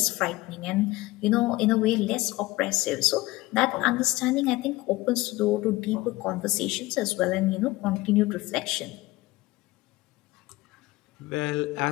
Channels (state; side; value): quieter; right; 19.7 dB